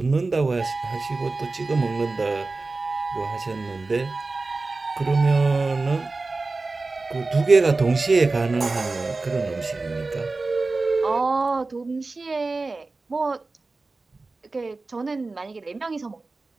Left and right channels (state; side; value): quieter; left; 3.6 dB